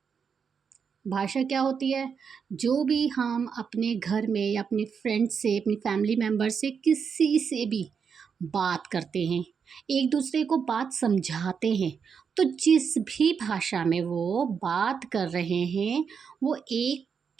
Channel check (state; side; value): quieter; left; 6.4 dB